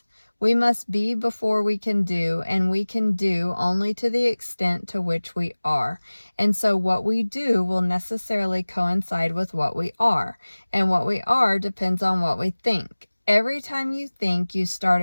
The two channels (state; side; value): inverted; both; correlation -1.00